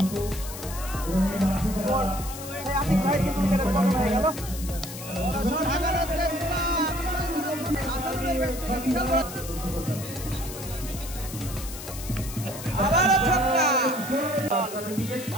আতিক ভাই কিন্তু উইকেটের পতন হয়ে গেল। বড় শট হাগানোর চেষ্টা, আবারও ছক্কা।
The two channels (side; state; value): left; noise; hiss, 11 dB below the sound